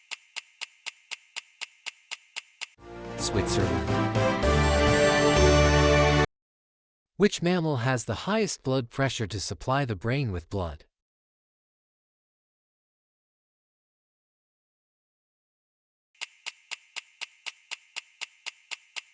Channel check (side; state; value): both; identical; correlation 1.00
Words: Switzerland. Which mammal has the highest blood pressure to supply the brain with blood?